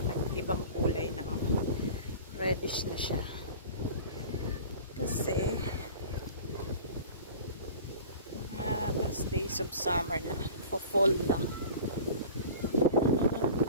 nag-ibang kulay na, reddish na siya kasi last days of summer na, fall na.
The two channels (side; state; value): both; inverted; correlation -0.40